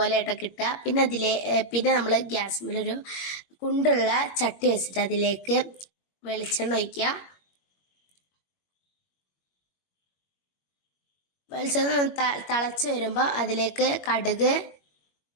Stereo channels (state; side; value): late; right; 21 ms